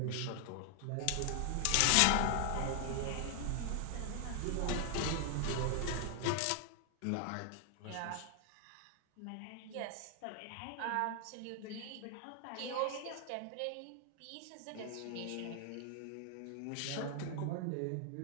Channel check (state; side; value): different; both; correlation 0.00